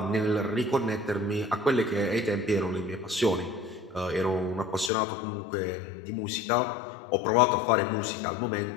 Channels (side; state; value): right; drops out; at 4.9 s